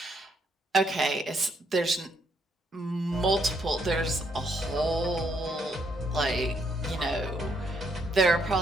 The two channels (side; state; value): both; normal; correlation 0.73